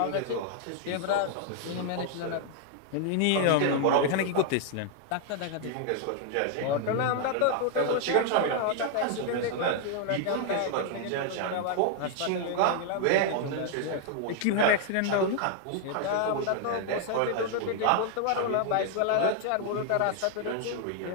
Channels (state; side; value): different; both; correlation 0.00